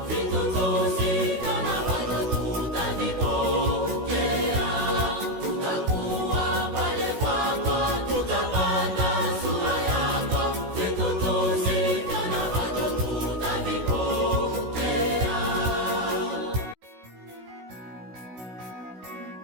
vitu tusiona bado tutavipokea. Tutakuwa pale kwako, tutapanda sura yako, vitu tusiona bado tutavipokea.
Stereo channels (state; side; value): late; left; 16 ms